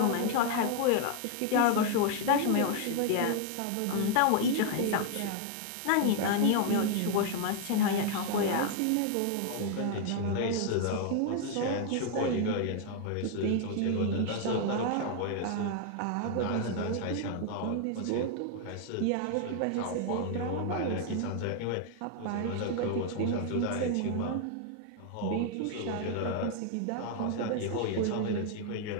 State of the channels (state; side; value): different; both; correlation 0.00